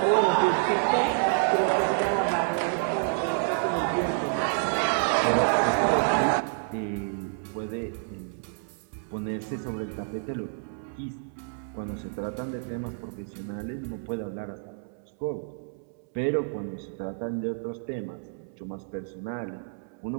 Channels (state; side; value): silent; left; 59 dB below the other